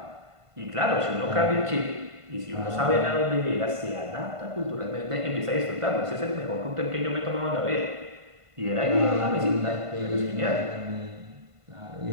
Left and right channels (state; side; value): late; left; 1.5 ms